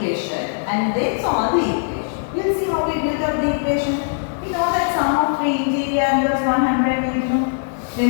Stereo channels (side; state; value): right; silent; 66 dB below the other